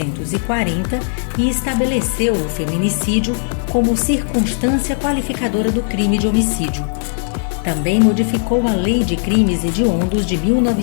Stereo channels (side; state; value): right; silent; 64 dB below the other